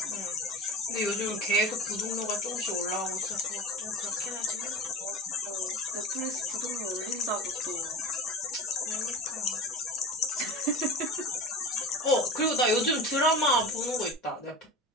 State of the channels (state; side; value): normal; both; correlation 0.33